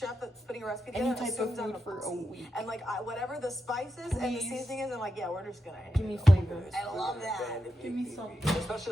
that's putting a recipe any together type of assumes I'm food a for a pussy. week. And like whatever the spices and the Please. seasoning is, I'm like, yeah, we're just gonna Give me flavor. I love that. Give me some.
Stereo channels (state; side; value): normal; both; correlation 0.87